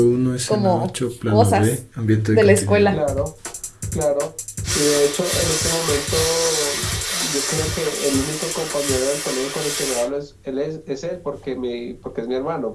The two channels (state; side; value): identical; both; correlation 1.00